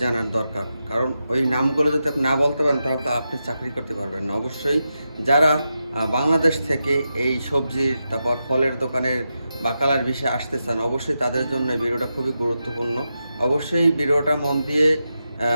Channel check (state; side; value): inverted; both; correlation -0.89